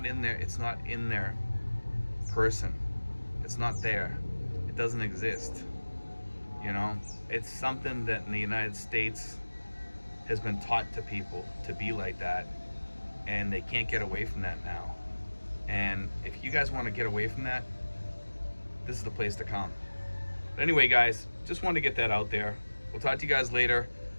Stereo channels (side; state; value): both; inverted; correlation -1.00